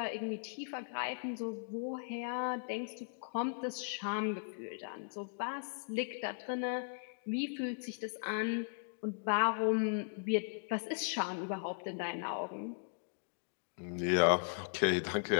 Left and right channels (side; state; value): right; quieter; 39.2 dB